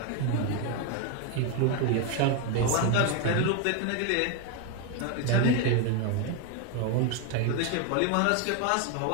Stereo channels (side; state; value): both; different; correlation 0.01